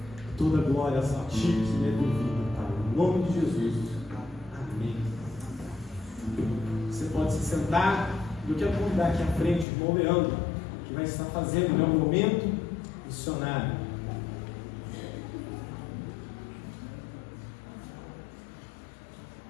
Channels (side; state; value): right; drops out; at 9.7 s